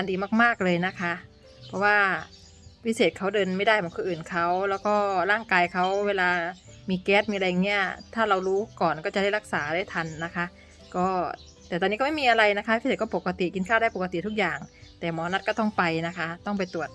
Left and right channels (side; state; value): both; identical; correlation 1.00